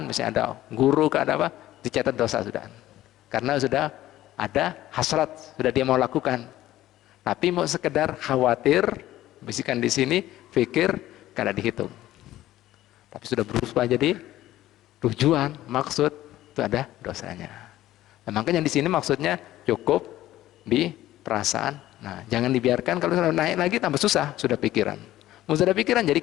misalnya ada guru, ada apa, dicatat dosa sudah. Karena sudah ada hasrat, sudah dia mau lakukan. Tapi mau sekedar khawatir, bisikan di sini, pikir, kada dihitung. Tapi sudah berubah jadi tujuan, maksud, itu ada dosanya. Nah, makanya di sini maksudnya cukup di perasaan. Nah, jangan dibiarkan, kalau sudah naik lagi tambah susah, sudah pikiran. Mau sudah pikiran jadi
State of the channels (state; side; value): quieter; right; 14.6 dB